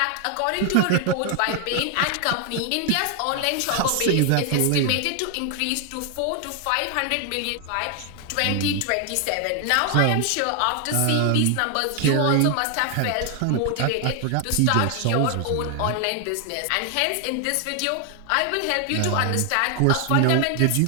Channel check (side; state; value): both; different; correlation 0.00